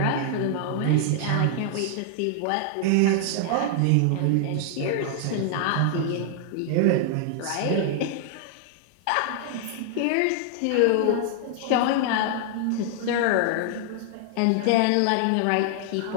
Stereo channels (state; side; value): different; both; correlation 0.00